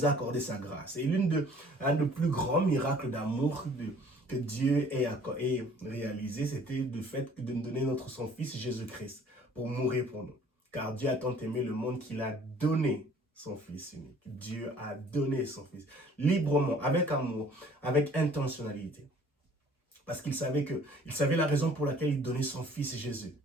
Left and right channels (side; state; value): both; normal; correlation 0.54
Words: a accordé sa grâce. Et un des plus grands miracles d'amour que Dieu ait réalisé, c'était le fait de nous donner son Fils Jésus-Christ pour mourir pour nous. Car Dieu a tant aimé le monde qu'il a donné son Fils unique. Dieu a donné son Fils librement, avec amour, avec intentionnalité. Parce qu'il savait la raison pour laquelle il donnait son Fils Jésus,